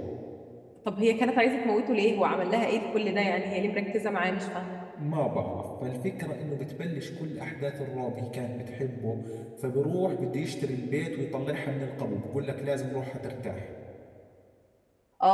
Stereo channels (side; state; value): both; identical; correlation 1.00